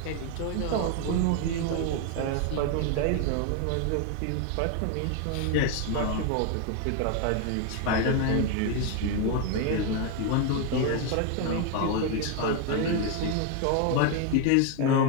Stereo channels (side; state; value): both; different; correlation 0.01